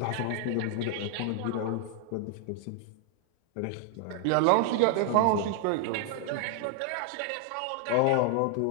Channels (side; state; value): both; different; correlation 0.00